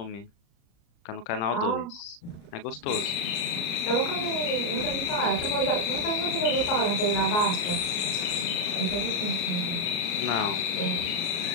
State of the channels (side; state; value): right; late; 35 ms